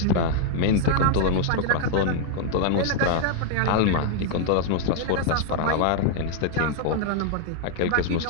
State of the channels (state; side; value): different; both; correlation -0.01